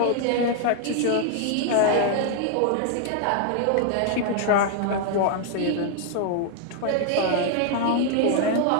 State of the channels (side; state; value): both; different; correlation 0.00